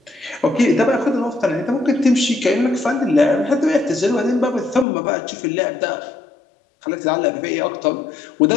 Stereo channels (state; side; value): drops out; right; at 4.9 s